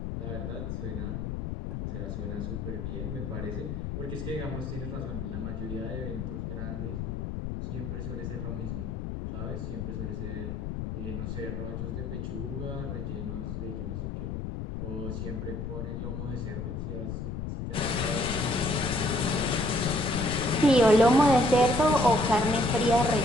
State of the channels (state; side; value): noise; left; rumble, 4 dB below the sound